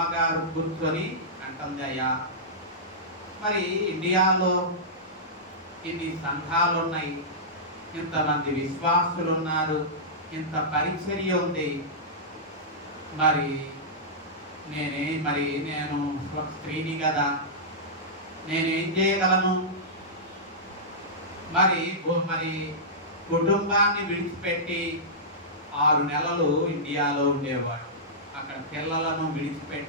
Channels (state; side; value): normal; both; correlation -0.14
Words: కూర్చొని అంటుంది, అయ్యా మరి ఇండియాలో ఇన్ని సంఘాలు ఉన్నాయి, ఇంతమంది విశ్వాసులు ఉన్నారు, ఇంత పరిచర్య ఉంది, మరి నేను ఒక స్త్రీని కదా, నేనేం చేయగలను? మరి కుటుంబాన్ని విడిచిపెట్టి 6 నెలలు ఇండియాలో ఉండేవాడు. అక్కడ పిల్లలను